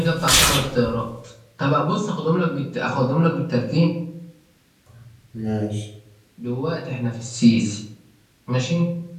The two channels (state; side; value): identical; both; correlation 1.00